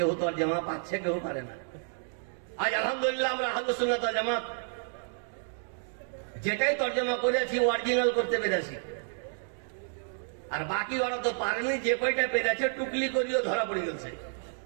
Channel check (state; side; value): silent; left; digital silence